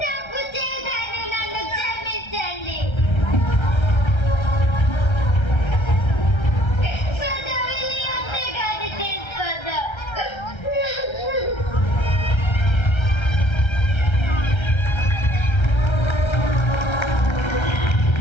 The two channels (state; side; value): late; right; 1.3 ms